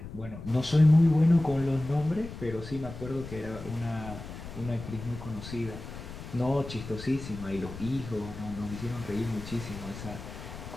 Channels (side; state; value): left; noise; rumble, 11 dB below the sound